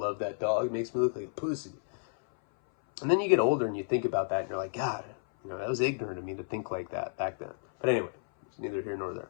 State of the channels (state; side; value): silent; right; 57 dB below the other